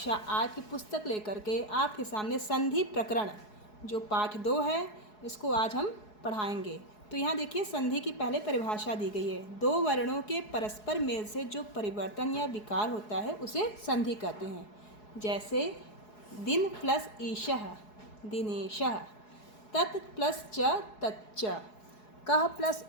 8 की पुस्तक लेकर के आपके सामने संधि प्रकरण जो पाठ 2 है इसको आज हम पढ़ाएंगे। तो यहाँ देखिए, संधि की पहले परिभाषा दी गई है। दो वर्णों के परस्पर मेल से जो परिवर्तन या विकार होता है उसे संधि कहते हैं। जैसे दिन प्लस ईशः दिनेशः, तत् प्लस च तच्च, कः प्लस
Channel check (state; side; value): late; right; 4.7 ms